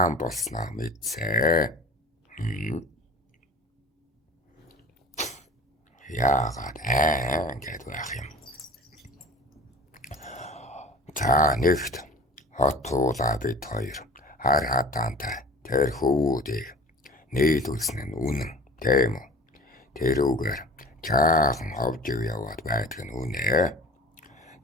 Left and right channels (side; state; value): both; normal; correlation 0.41